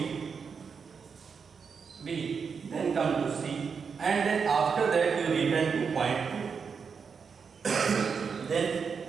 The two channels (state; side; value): quieter; left; 5.9 dB